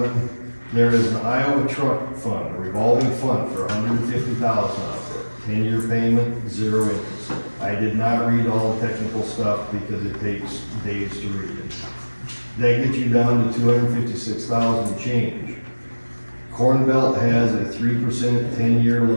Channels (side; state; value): both; inverted; correlation -1.00